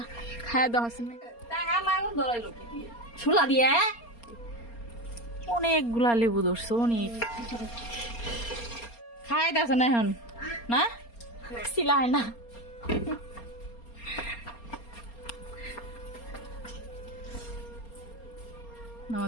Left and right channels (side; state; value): right; late; 4.3 ms